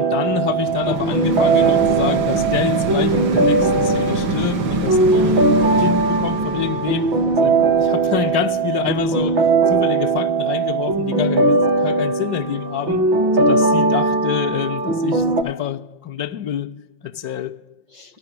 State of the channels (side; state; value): left; late; 5.0 ms